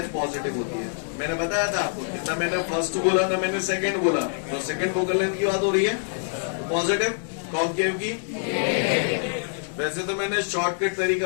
पॉजिटिव होती है। मैंने बताया था आपको, ना मैंने फर्स्ट बोला ना मैंने सेकंड बोला, तो सेकंड फोकल लेंथ की बात हो रही है पॉजिटिव। कॉन्केव की वैसे तो मैंने शॉर्टकट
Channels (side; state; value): right; silent; 62 dB below the other